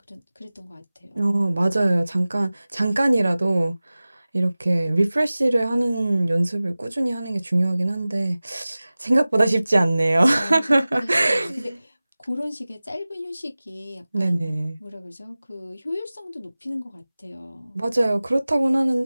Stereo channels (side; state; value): both; inverted; correlation -0.98